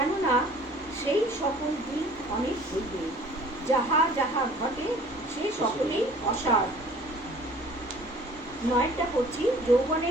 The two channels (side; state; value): both; normal; correlation 0.50